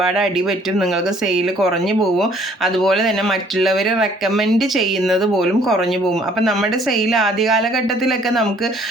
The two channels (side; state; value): both; normal; correlation 0.60